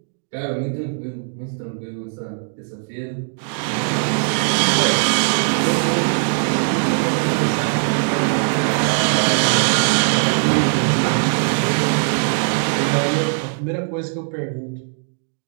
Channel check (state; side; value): silent; left; 66 dB below the other